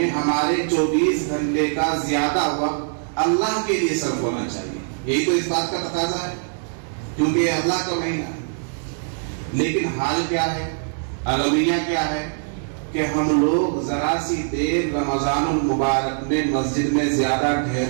ہمارے 24 گھنٹے کا زیادہ وقت اللہ کے لیے صرف ہونا چاہیے. یہی تو اس بات کا تقاضا ہے کیونکہ یہ اللہ کا مہینہ ہے. لیکن حال کیا ہے، المیہ کیا ہے کہ ہم لوگ ذرا سی دیر رمضان المبارک میں مسجد میں زیادہ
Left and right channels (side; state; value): left; silent; digital silence